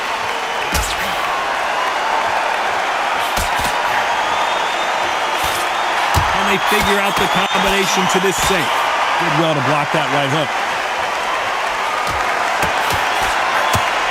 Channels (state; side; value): identical; both; correlation 1.00